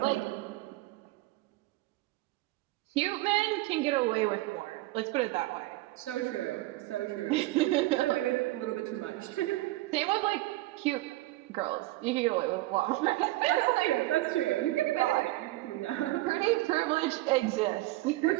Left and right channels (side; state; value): left; quieter; 18.6 dB